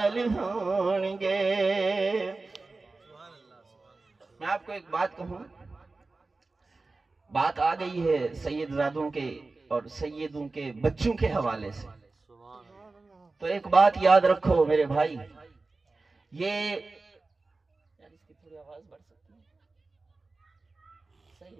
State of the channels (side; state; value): left; quieter; 3.6 dB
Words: ہون گے میں آپ کو ایک بات کہوں بات آ گئی ہے سید زادوں کے اور سیدوں کے بچوں کے حوالے سے تو ایک بات یاد رکھو میرے بھائی یہ